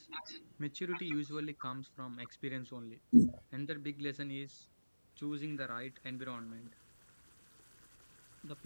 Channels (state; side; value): inverted; both; correlation -1.00